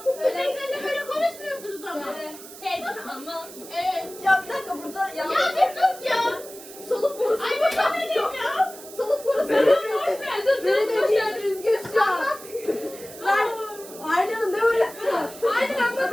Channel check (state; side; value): noise; right; hiss, 16 dB below the sound